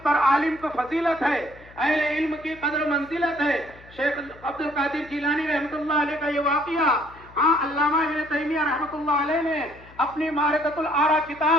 پر عالم کو فضیلت ہے، اہل علم کی قدر منزلت ہے۔ شیخ عبد القادر جیلانی رحمۃ اللہ علیہ کا یہ واقعہ علامہ ابن تیمیہ رحمۃ اللہ علیہ نے اپنی معرکۃ الآراء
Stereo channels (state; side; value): noise; left; hum, 22 dB below the sound